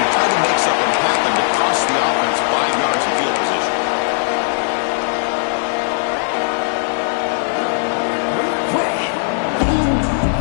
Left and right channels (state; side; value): silent; right; 61 dB below the other